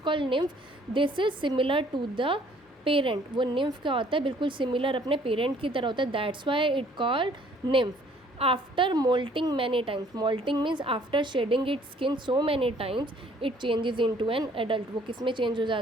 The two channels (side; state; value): both; normal; correlation 0.59